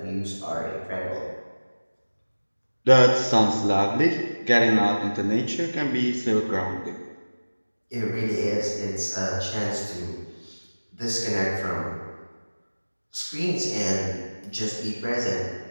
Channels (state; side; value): inverted; both; correlation -1.00